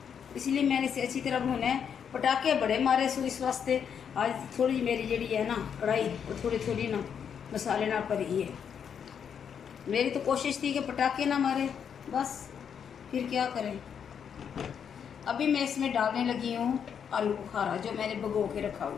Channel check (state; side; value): quieter; right; 7.7 dB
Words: इसलिए मैंने इसे अच्छी तरह भुना है। पटाखे बड़े मारे सो इस वास्ते आज थोड़ी मेरी जड़ी है ना कढ़ाई वो थोड़ी ना मसाले ना भरी है। मेरी तो कोशिश थी कि पटाखे ना मारे, बस फिर क्या करें। अभी मैं इसमें डालने लगी हूँ आलू बुखारा जो मैंने भिगो के रखा हुआ